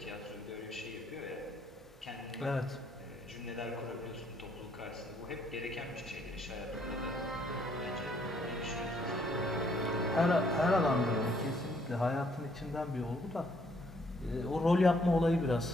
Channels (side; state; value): both; normal; correlation 0.67